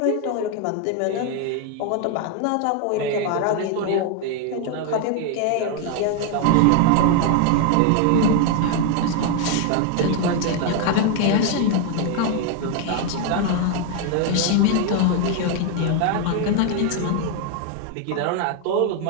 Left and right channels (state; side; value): different; both; correlation 0.01